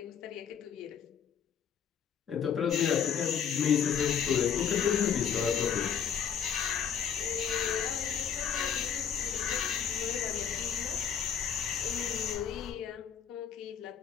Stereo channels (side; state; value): right; quieter; 7.9 dB